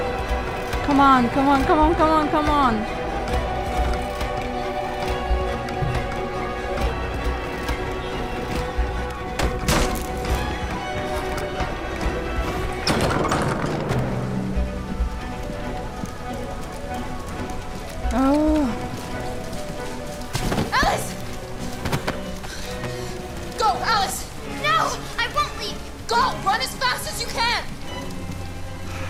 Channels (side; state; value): both; identical; correlation 1.00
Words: Come on, come on, come on, come on, come on! Oh. Alice! Go, Alice! No! I won't leave! Go! Run as fast as you can!